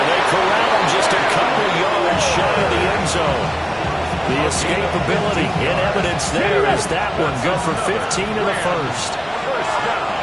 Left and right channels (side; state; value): both; identical; correlation 1.00